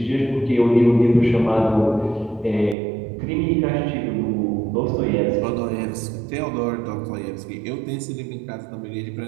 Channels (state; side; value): drops out; left; at 2.8 s